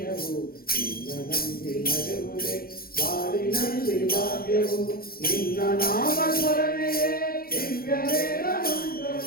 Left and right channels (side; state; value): right; late; 0.43 ms